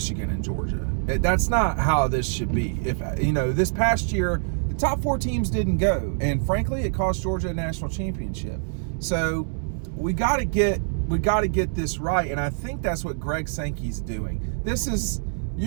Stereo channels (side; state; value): left; silent; 61 dB below the other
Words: and Georgia. That's not how this should be. If this past year the top 4 teams didn't go, and frankly it cost Georgia a national championship. So we got to get this right, and I think that's what Greg Sankey's doing.